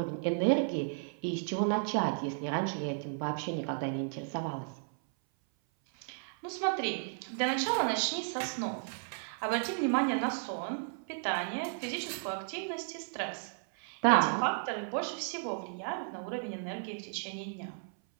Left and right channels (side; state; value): left; silent; 55 dB below the other